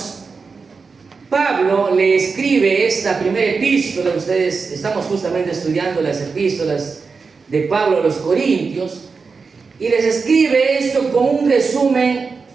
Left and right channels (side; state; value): left; quieter; 4.8 dB